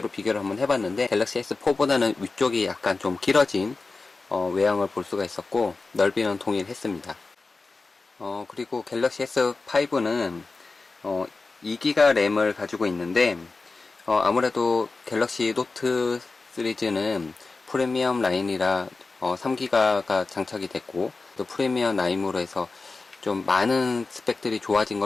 비교를 한번 해봤는데 갤럭시 S4보다는 위쪽이 약간 좀 길어진 외형을 볼 수가 있었고 넓이는 동일했습니다. 그리고 갤럭시 S5는 2GB 램을 가지고 있는데 아무래도 갤럭시 노트 시리즈는 프리미엄 라인이라 3GB가 장착이 됐고 또 프리미엄 라인으로 해서 좀 많은 스펙들이 좋아진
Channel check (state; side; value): quieter; right; 3.8 dB